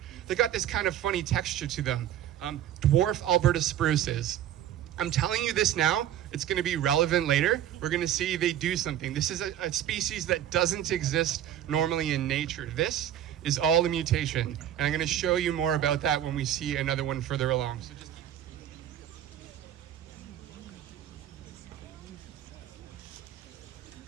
They got this kind of funny texture to them. Dwarf Alberta spruces. I'm telling you this now, it's going to be relevant later. We're going to see they do something. This is a species that doesn't exist normally in nature. This is all a mutation. And I'm going to show you more about that when we see another one further along. So just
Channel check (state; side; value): quieter; left; 11.2 dB